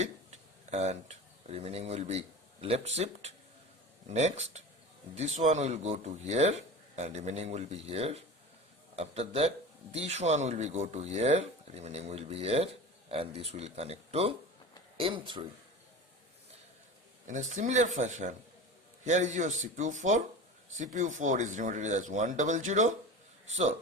and remaining will be left shift. Next, this one will go to here and remaining will be here. After that, this one will be go to here, remaining will be here, and this will connect to M3. In a similar fashion, here is your CPU 4. CPU 4 is denoted as 100. So,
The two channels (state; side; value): normal; both; correlation 0.32